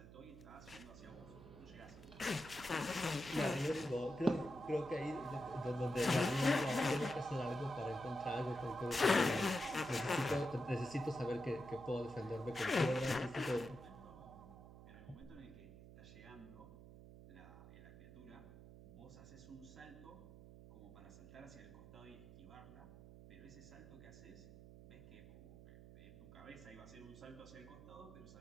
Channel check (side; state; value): right; noise; hum, 16 dB below the sound